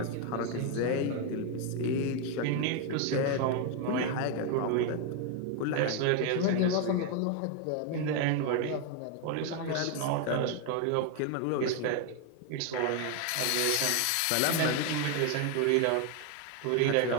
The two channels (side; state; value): both; different; correlation 0.01